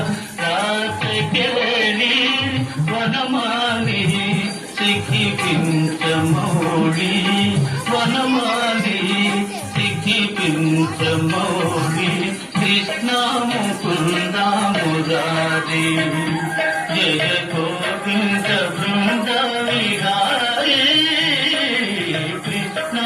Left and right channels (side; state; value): both; identical; correlation 1.00